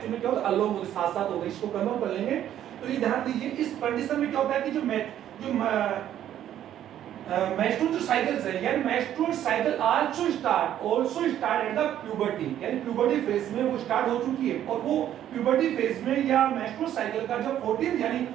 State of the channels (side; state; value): left; quieter; 11.2 dB